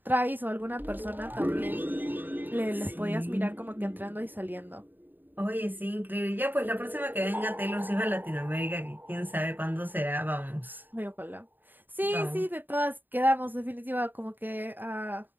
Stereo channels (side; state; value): left; late; 0.091 ms